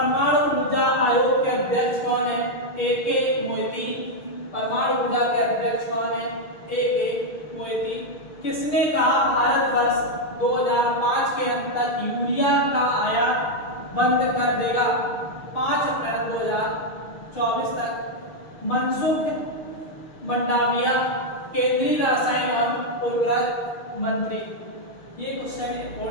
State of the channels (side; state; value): right; late; 6.5 ms